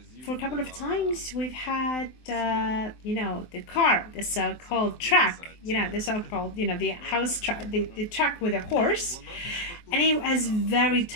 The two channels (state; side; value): late; right; 23 ms